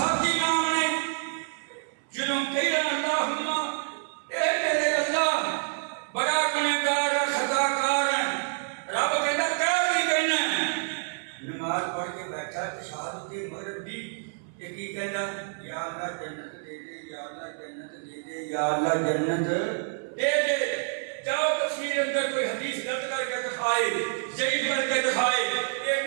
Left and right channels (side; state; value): left; silent; 57 dB below the other